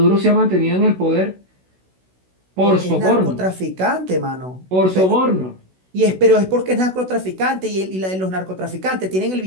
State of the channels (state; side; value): late; left; 16 ms